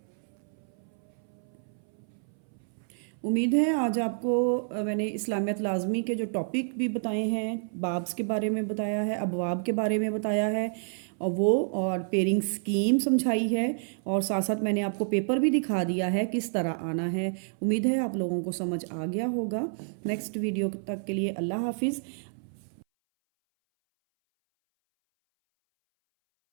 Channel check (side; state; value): left; silent; 59 dB below the other